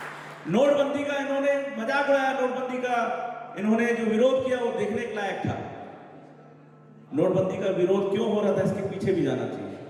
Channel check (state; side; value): identical; both; correlation 1.00